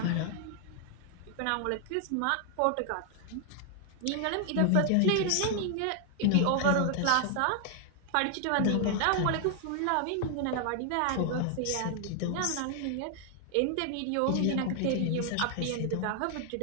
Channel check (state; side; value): different; both; correlation 0.00